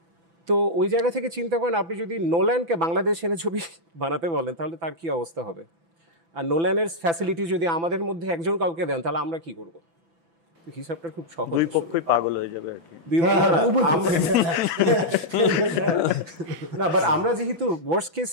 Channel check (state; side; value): late; left; 6.0 ms